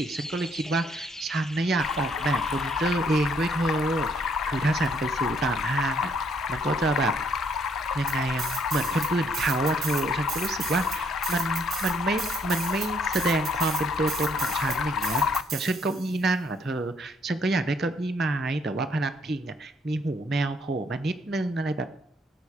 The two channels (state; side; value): normal; both; correlation 0.68